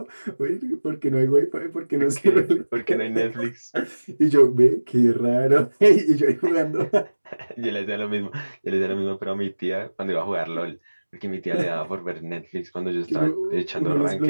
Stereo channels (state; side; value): inverted; both; correlation -1.00